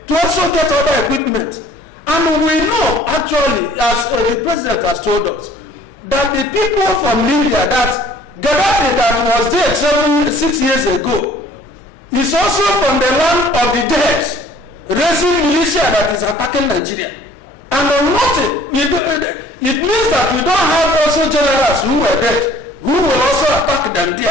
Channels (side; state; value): both; normal; correlation 0.54